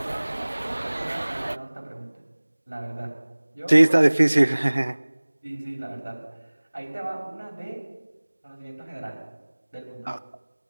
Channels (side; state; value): both; inverted; correlation -1.00